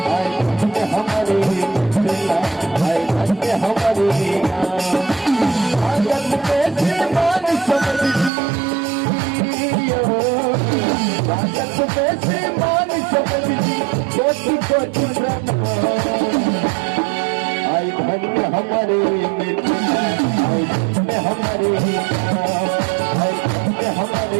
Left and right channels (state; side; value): drops out; left; at 8.3 s